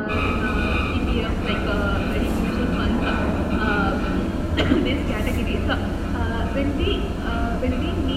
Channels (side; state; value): both; identical; correlation 1.00